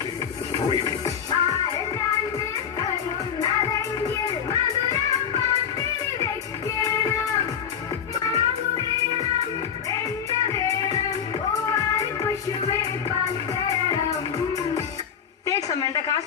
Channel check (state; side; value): quieter; right; 7.9 dB